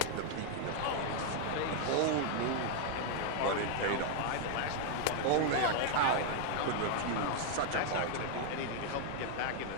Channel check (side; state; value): both; different; correlation 0.00